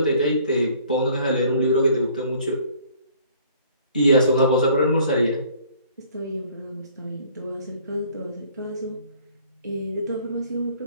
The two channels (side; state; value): both; inverted; correlation -0.56